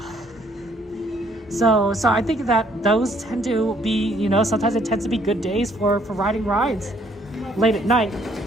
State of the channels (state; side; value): normal; both; correlation 0.65